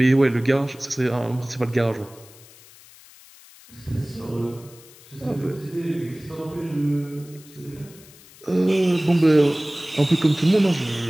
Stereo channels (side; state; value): left; noise; hiss, 23 dB below the sound